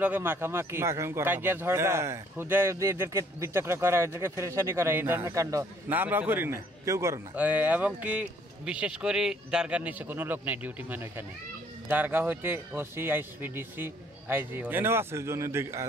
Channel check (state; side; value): normal; both; correlation 0.62